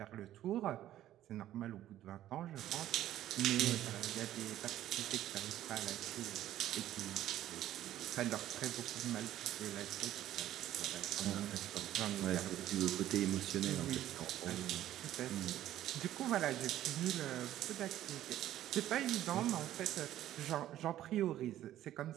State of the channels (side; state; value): left; quieter; 13.0 dB